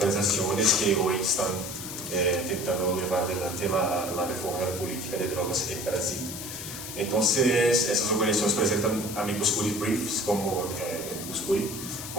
que hoy están intentando llevar adelante la reforma de la política de drogas en Brasil. Entonces, esas organizaciones presentan amigos curi briefs como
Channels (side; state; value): left; noise; hiss, 9 dB below the sound